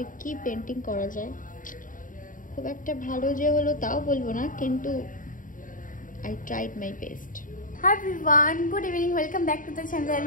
কি পেন্টিং করা যায়। খুব একটা ভালো যে হলো তাও বলবো না, কিন্তু I tried my best. Hi everyone, good evening, welcome back to the channel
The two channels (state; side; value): late; right; 0.39 ms